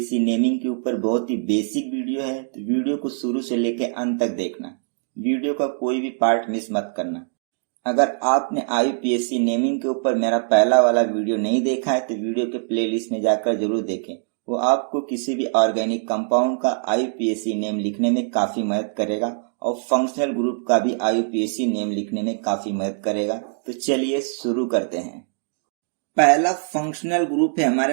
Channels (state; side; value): silent; left; digital silence